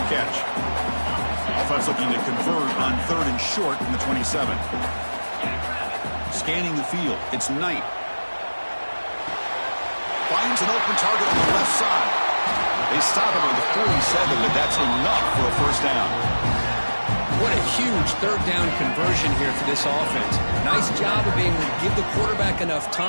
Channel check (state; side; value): inverted; both; correlation -1.00